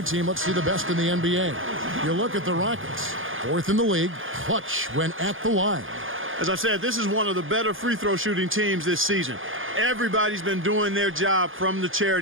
team. Let's see the best in the NBA. You look at the Rockets, 4th in the league, clutch when at the line. As I said, this is one of the better free throw shooting teams this season. Everybody's been doing their job from the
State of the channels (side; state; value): left; late; 0.58 ms